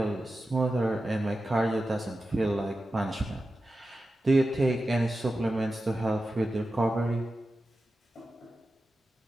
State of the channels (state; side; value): normal; both; correlation 0.92